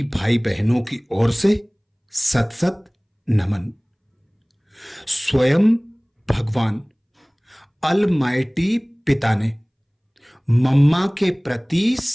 भाई बहनों की ओर से सत सत नमन। स्वयं भगवान अलमाइटी पिता ने मम्मा के प्रति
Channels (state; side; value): identical; both; correlation 1.00